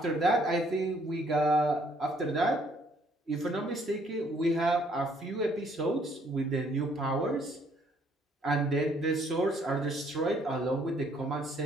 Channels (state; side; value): normal; both; correlation 0.65